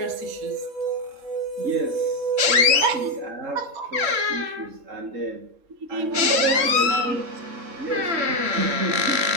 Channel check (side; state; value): left; late; 3.7 ms